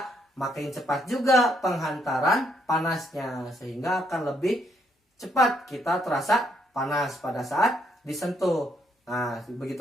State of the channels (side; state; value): both; normal; correlation 0.73